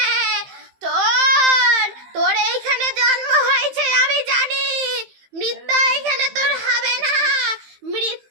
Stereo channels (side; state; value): left; late; 15 ms